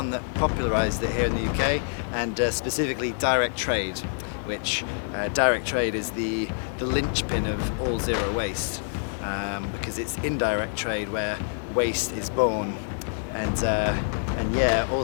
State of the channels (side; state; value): right; silent; 61 dB below the other